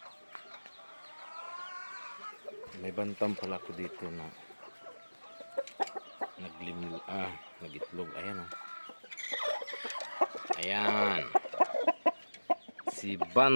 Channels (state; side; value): inverted; both; correlation -1.00